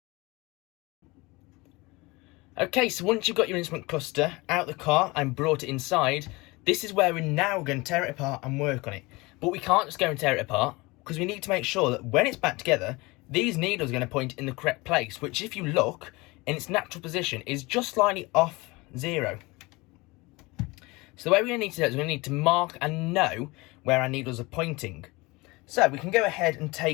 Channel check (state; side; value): quieter; right; 23.5 dB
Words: Okay, so once you've got your instrument cluster out of the car and brought it inside, this is where we're now going to tear it apart and work on it. But we can't just go and tear it apart, because we need to make sure that when it's back together, these needles are going to point in the correct place, which if you look, in its natural position, is just slightly off 0. So the way we're going to need to do it is we're going to need to mark and know where our needles are pointing. So we can go ahead and